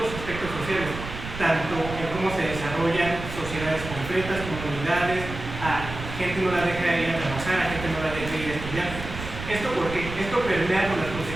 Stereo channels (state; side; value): noise; right; rumble, 9 dB below the sound